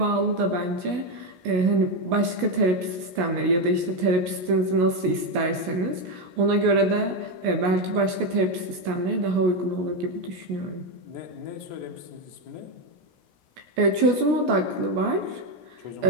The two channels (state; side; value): late; left; 16 ms